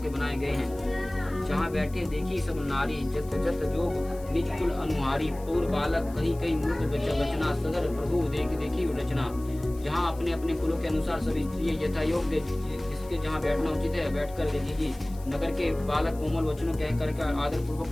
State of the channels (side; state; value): left; noise; hiss, 23 dB below the sound